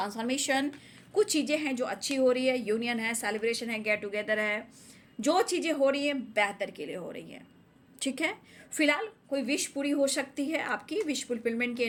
कुछ चीज़ें हैं जो अच्छी हो रही है, यूनियन है, सेलिब्रेशन है, गेट टुगेदर है, जो चीज़ें हो रही हैं बेहतर के लिए हो रही हैं। ठीक है, फिलहाल कोई विश पूरी हो सकती है, आपकी विश फुलफिलमेंट की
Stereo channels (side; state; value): both; identical; correlation 1.00